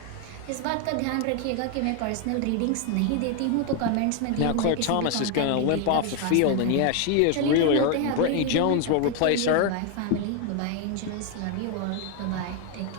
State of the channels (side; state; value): both; different; correlation 0.01